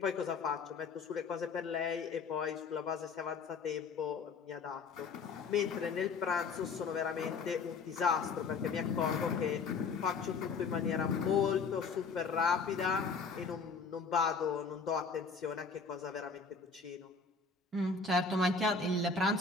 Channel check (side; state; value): right; quieter; 4.8 dB